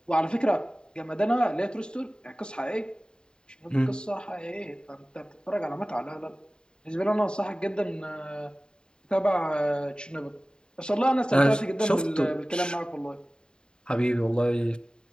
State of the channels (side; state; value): right; late; 0.048 ms